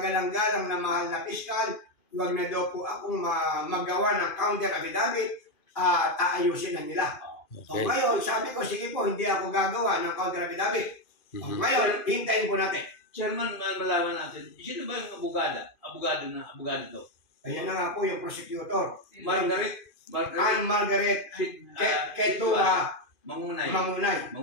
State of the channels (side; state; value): right; late; 2.5 ms